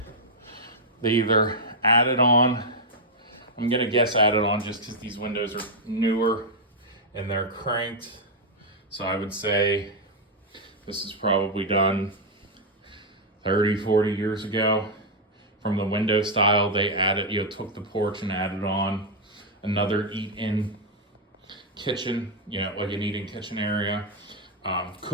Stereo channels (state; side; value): normal; both; correlation -0.02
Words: they either added on, I'm gonna guess added on just because these windows are newer and they're cranked. So I would say this is probably done 30, 40 years ago. From the window style, they added, took the porch and added on another eat-in kitchen, like an eating kitchen area.